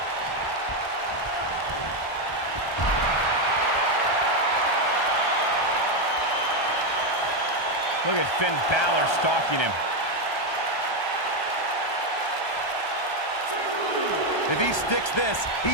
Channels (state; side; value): late; right; 1.3 ms